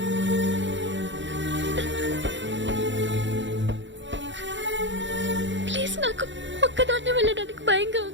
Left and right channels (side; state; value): left; late; 0.54 ms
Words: ప్లీజ్, నాకు ఒక్కదాన్నే వెళ్ళడానికి భయంగా